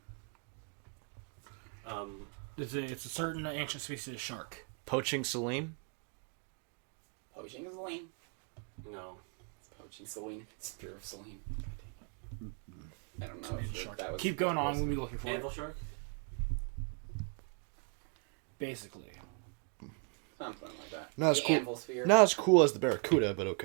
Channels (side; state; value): left; quieter; 39.4 dB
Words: Um, It's a certain ancient species of shark. Poaching Celine? Poaching Selene. no. Poaching Selene. Spear of Selene. I don't know if Shark. that was... Keep going on. We'll be looking for Anvil it. shark? Basically. Something like that. Not as The cool. Anvil sphere. Not as cool as the Barracuda, but